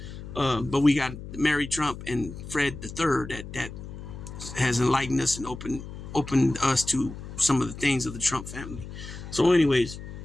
But we got Mary Trump and Fred III that has enlightened us and opened us to some of the things of the Trump family. So, anyways,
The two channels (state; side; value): noise; left; hum, 11 dB below the sound